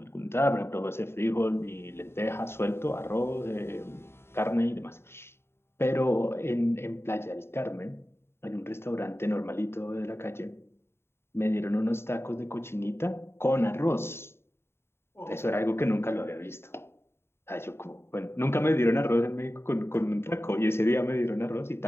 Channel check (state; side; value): late; right; 0.12 ms